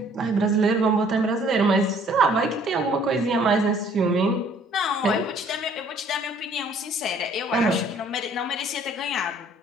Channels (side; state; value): both; normal; correlation 0.58